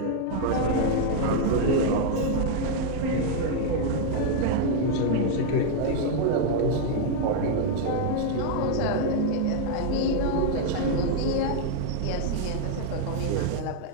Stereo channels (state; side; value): different; both; correlation 0.00